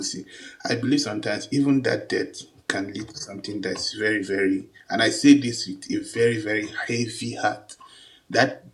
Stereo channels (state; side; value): identical; both; correlation 1.00